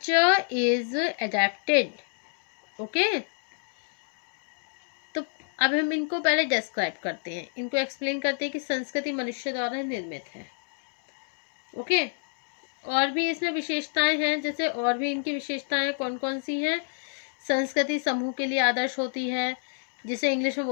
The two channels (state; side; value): silent; right; digital silence